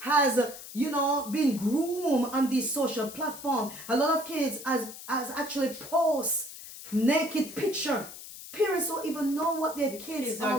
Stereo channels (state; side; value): noise; left; hiss, 13 dB below the sound